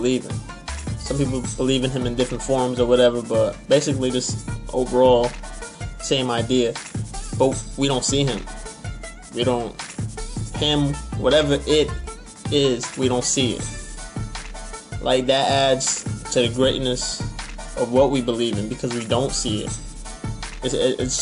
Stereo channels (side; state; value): both; identical; correlation 1.00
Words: in. Some people believe in him in different forms or whatever, but basically this overall same idea. But we don't see him. We don't, him, whatever it is, we don't see it. Like, that adds to the greatness of what we believe in because we don't see it. It's